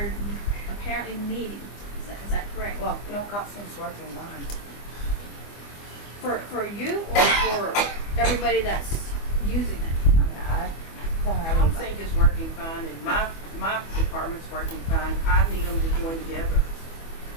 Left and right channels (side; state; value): right; late; 25 ms